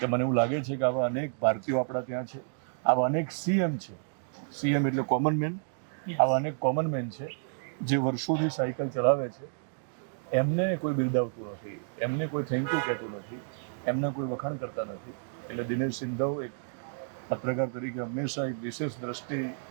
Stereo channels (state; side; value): silent; left; digital silence